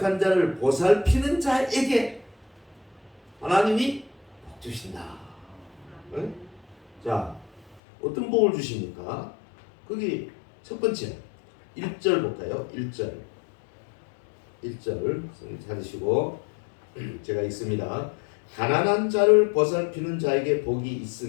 자를 보살피는 자에게 하나님이 복 주신다. 네? 자, 어떤 복을 주십니까? 거기 첫 번째 1절 볼까요? 1절 성경 찾으시고 제가 읽습니다. 가난한 자를 보살피는 자에게 복이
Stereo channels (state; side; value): drops out; right; at 7.8 s